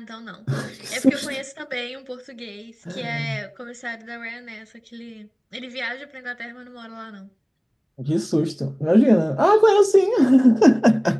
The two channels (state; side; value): identical; both; correlation 1.00